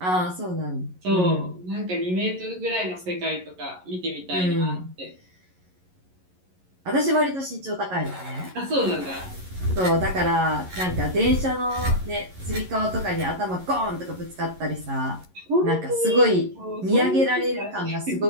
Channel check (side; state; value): left; late; 11 ms